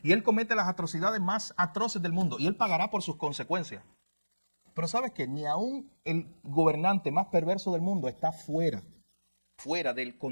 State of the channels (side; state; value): both; inverted; correlation -1.00